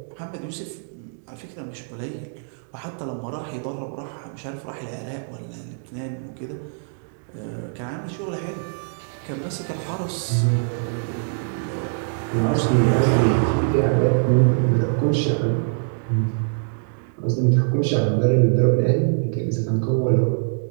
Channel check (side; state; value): left; silent; digital silence